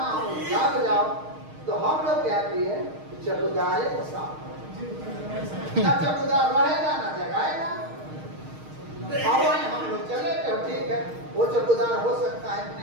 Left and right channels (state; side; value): late; left; 6.5 ms